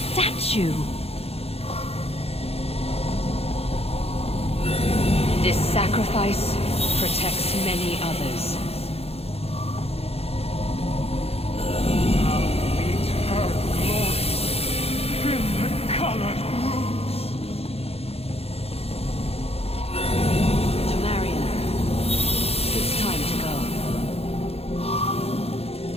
This sacrifice protects many others. Tamriel, it's time to go.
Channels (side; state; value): right; late; 0.29 ms